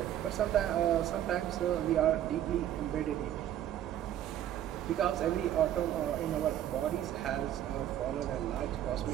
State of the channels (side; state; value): left; quieter; 11.5 dB